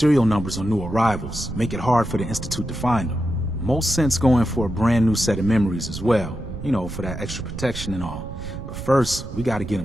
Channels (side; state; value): right; noise; rumble, 9 dB below the sound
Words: numbers on new arrivals. Make it hard for the Institute to find them. Most sense going for a brand new set of memories as well. You know, for that extra protection and all. But first, we gotta get